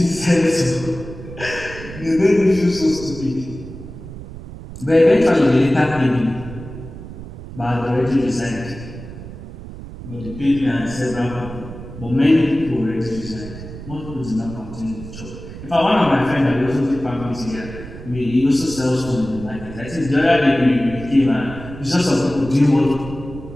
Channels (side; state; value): right; noise; rumble, 13 dB below the sound